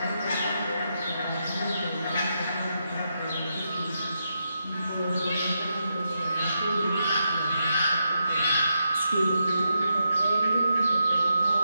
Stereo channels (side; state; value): both; inverted; correlation -0.84